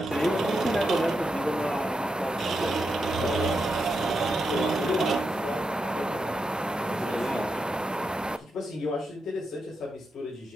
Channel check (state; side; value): normal; both; correlation 0.86